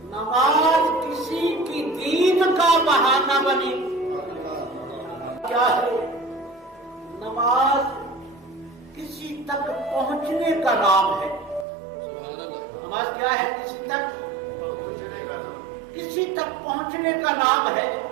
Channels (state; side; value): drops out; left; at 11.7 s